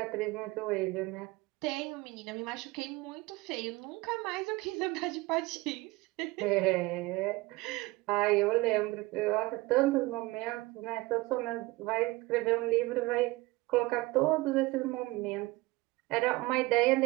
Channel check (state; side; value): quieter; left; 21.2 dB